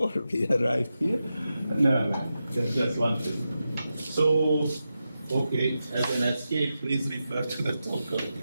we arrived here. No, that's one thing. So, okay, as an escape, please refer to the talk of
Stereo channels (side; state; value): both; inverted; correlation -0.90